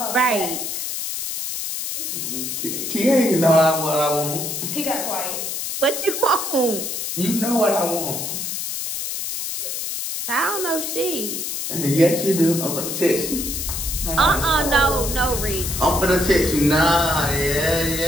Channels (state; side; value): noise; left; hiss, 4 dB below the sound